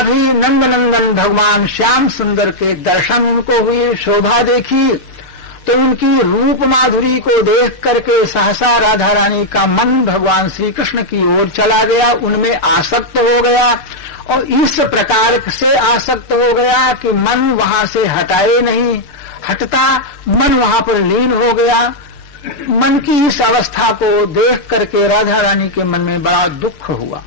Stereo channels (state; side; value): late; right; 6.7 ms